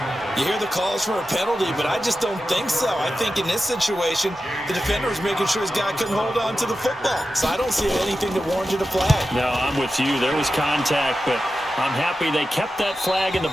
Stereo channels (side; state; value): both; normal; correlation 0.92